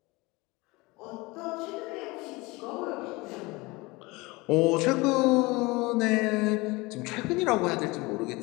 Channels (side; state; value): right; quieter; 23.5 dB